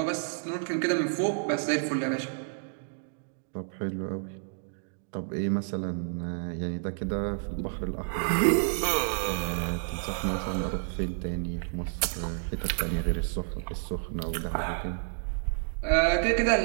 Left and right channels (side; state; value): left; silent; digital silence